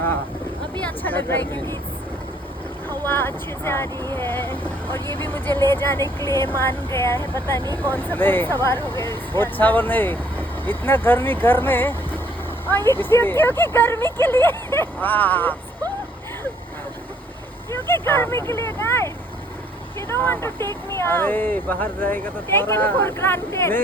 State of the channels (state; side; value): normal; both; correlation 0.63